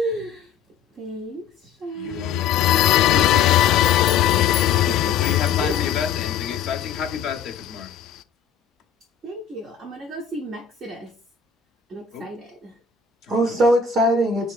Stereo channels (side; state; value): right; quieter; 6.9 dB